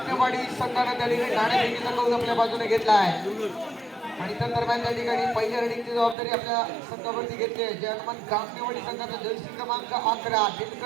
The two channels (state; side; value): drops out; left; at 6.2 s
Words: संघाने त्या ठिकाणी नाणेफेकीचा कौल आपल्या बाजूने घेतला आहे आणि त्या दरम्यान त्या ठिकाणी पहिल्या रेडिंगची जबाबदारी आपल्या संघावरती घेतली आहे. जय हनुमान काकणेवाडी संघाचा जर्सी क्रमांक 11